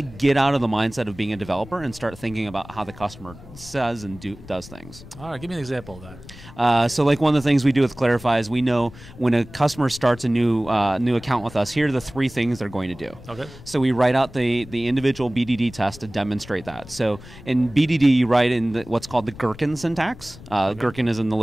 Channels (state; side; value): noise; left; rumble, 18 dB below the sound